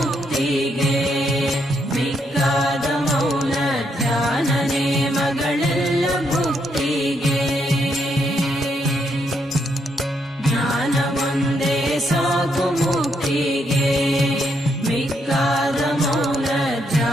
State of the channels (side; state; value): both; normal; correlation 0.76